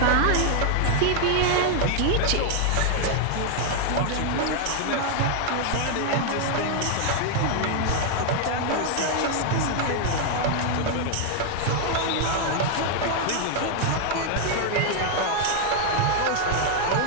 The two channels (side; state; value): both; different; correlation 0.00